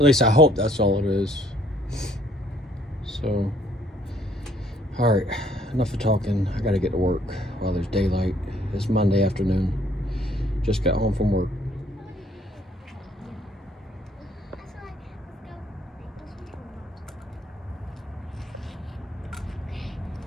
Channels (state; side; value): normal; both; correlation 0.64